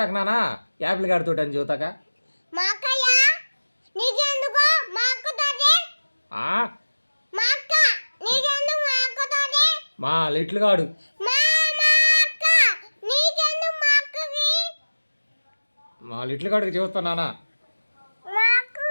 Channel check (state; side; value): inverted; both; correlation -1.00